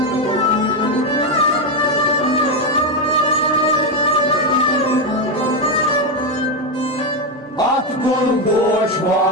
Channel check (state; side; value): normal; both; correlation 0.07